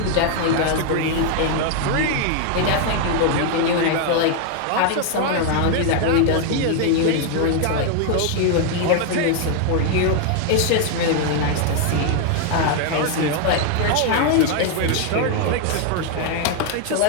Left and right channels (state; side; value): different; both; correlation 0.00